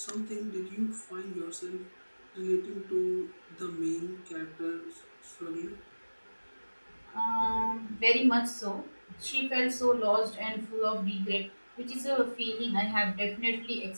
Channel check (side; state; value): both; inverted; correlation -1.00